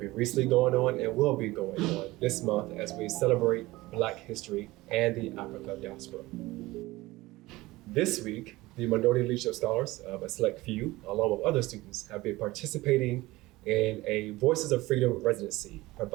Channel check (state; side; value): quieter; left; 19.5 dB